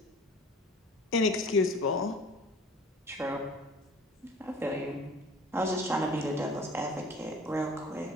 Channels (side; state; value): both; normal; correlation 0.45